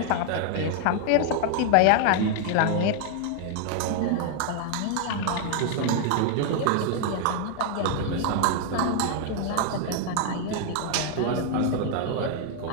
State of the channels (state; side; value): different; both; correlation 0.00